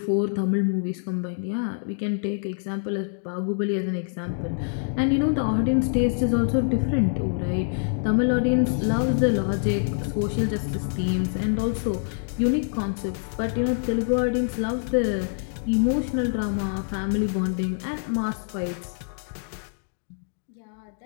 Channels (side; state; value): right; silent; digital silence